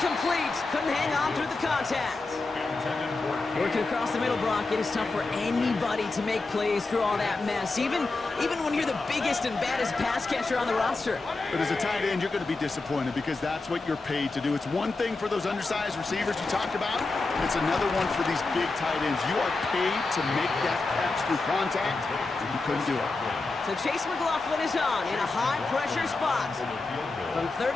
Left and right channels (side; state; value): right; quieter; 3.5 dB